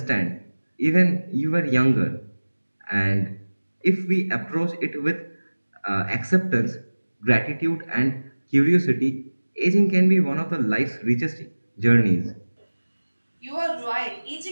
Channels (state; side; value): inverted; both; correlation -1.00